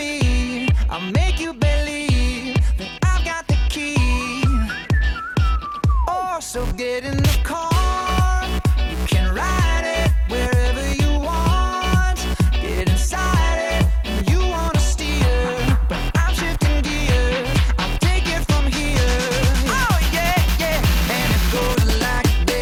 I'll make you believe that I've got the key. Oh, so get in the car. You can ride it wherever you want. Get inside it when you wanna steer. But I'm shifting gears. I'll take it from here. Oh yeah, yeah. And it goes like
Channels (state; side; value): identical; both; correlation 1.00